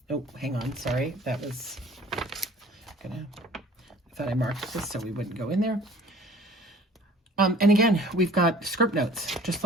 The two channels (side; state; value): both; normal; correlation 0.50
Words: hang on. Sorry. That was I thought I marked this so we wouldn't go in there. And again, we've got script notes, just